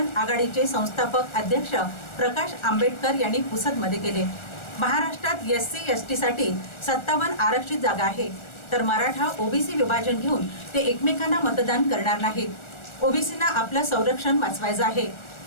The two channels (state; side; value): late; right; 1.4 ms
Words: आघाडीचे संस्थापक अध्यक्ष प्रकाश आंबेडकर यांनी पुसदमध्ये केले। महाराष्ट्रात एससी एसटी साठी 57 आरक्षित जागा आहे, तर मराठा ओबीसी विभाजन घेऊन ते एकमेकांना मतदान करणार नाहीत। ओबीसींना आपलं संरक्षण वाचवायचं आहे,